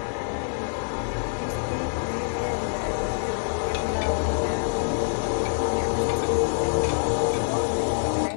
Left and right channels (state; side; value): silent; right; digital silence